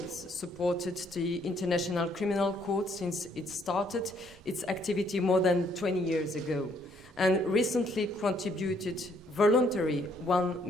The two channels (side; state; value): both; normal; correlation 0.67